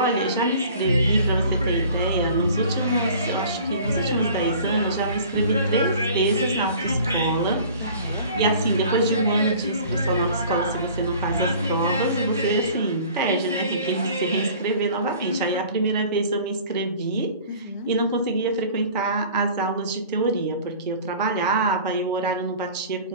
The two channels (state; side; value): inverted; both; correlation -0.46